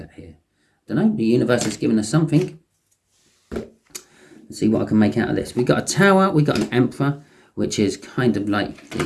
here? I don't know. The universe has given us something. Let's see what I can make out of this. We've got a Tower, we've got an Emperor, which is kind of like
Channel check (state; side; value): identical; both; correlation 1.00